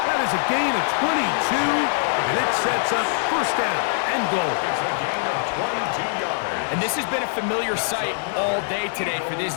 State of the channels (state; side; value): silent; right; digital silence